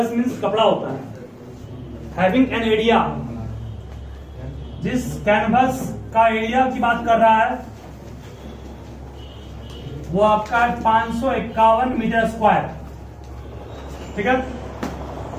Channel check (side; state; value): both; identical; correlation 1.00